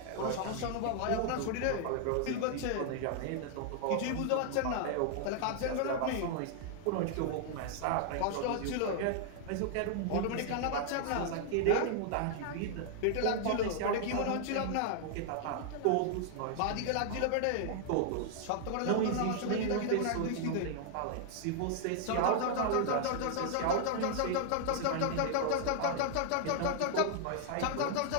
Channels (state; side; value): different; both; correlation -0.01